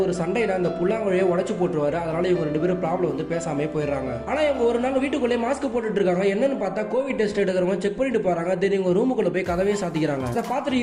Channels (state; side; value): identical; both; correlation 1.00